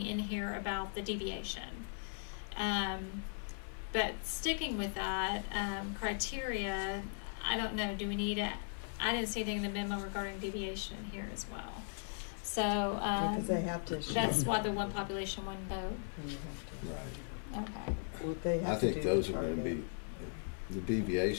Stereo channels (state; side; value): silent; right; digital silence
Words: in here about the deviation. But sticking with that criteria, I don't know, do we need it? I didn't see anything in the memo regarding deviation in here as well. So Because they have to. that's why the one population, one vote. Right. Okay. Well, they have I think to do those the are going to target. be, the